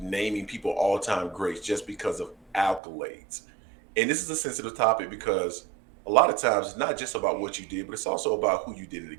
people all-time greats just because of accolades. And this is a sensitive topic because a lot of times it's not just about what you did, but it's also about who you did it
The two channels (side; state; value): left; drops out; at 2.8 s